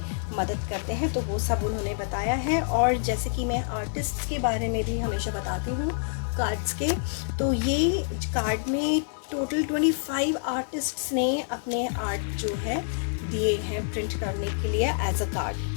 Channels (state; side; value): silent; right; digital silence